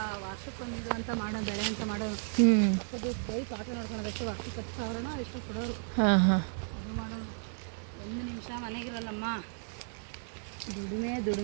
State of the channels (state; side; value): silent; left; 56 dB below the other